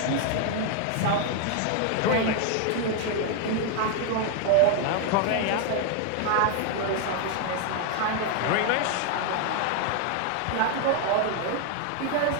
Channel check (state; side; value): different; both; correlation 0.00